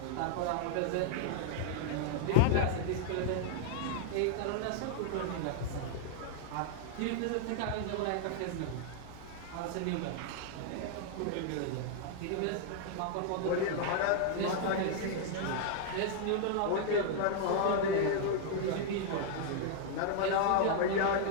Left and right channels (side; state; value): both; different; correlation -0.01